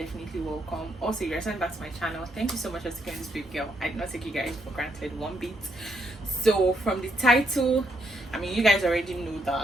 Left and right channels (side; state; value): both; normal; correlation 0.76